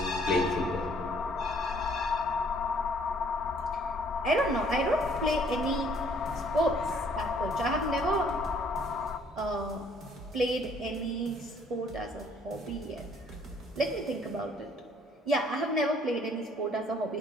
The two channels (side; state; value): both; normal; correlation 0.61